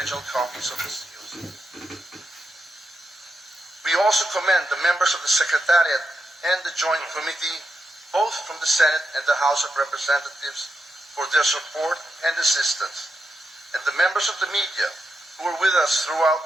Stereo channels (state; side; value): normal; both; correlation 0.86